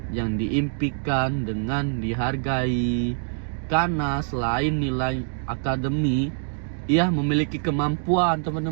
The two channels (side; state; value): left; silent; digital silence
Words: yang diimpikan dengan dihargai. Karena selain nilai akademi, ia memiliki kemampuan,